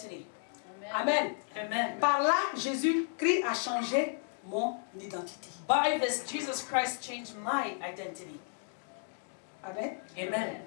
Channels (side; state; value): right; silent; 56 dB below the other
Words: Amen. Amen. Par là, Jésus-Christ a changé mon identité. By this, Jesus Christ changed my identity. Amen. Amen.